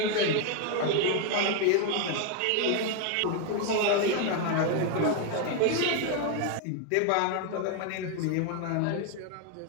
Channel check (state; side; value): different; both; correlation 0.01